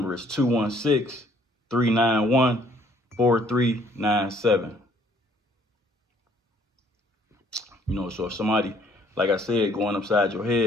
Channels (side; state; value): both; normal; correlation 0.62